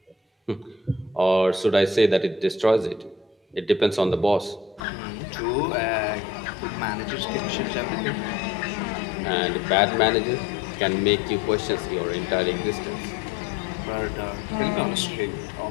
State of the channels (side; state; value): right; drops out; at 4.8 s